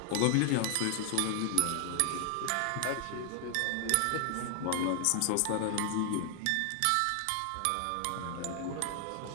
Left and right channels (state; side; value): different; both; correlation 0.00